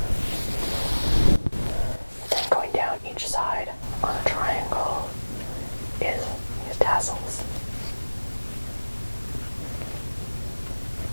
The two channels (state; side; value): inverted; both; correlation -1.00